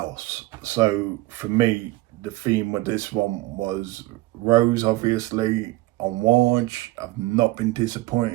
So for me, the theme with this one was rose, obviously. Amouage, I've not been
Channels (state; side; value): quieter; left; 19.6 dB